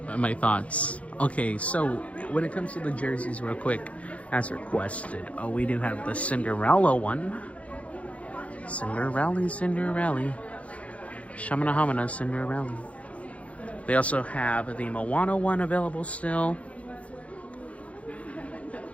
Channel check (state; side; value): late; right; 0.065 ms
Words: my thoughts. Okay, so when it comes to the jerseys real quick, as requested, we do have the Cinderella one. Cinderella. Shamana Hamana Cinderella. They also have the Moana one available still.